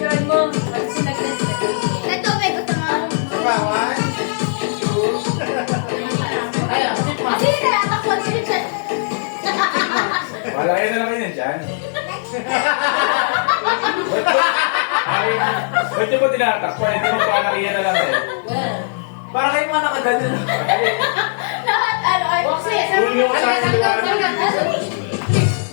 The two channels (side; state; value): right; silent; 67 dB below the other